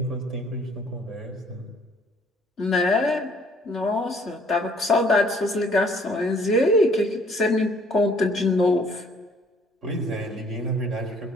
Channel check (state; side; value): normal; both; correlation 0.59